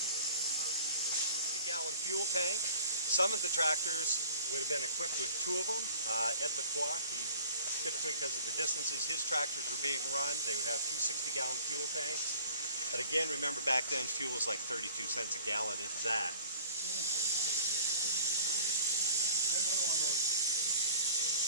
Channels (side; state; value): both; inverted; correlation -0.46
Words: 50-gallon fuel tank. Some of the tractors would have been equipped with 2 of them. Ed Lacroix, typically because of the distances his tractors were being run, they would have 2 60-gallon fuel tanks. But again, remember back then fuel was like 32 cents a gallon, if that.